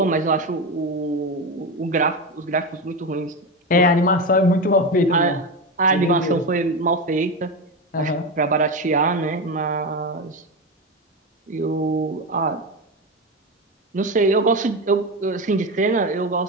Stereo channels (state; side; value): normal; both; correlation 0.17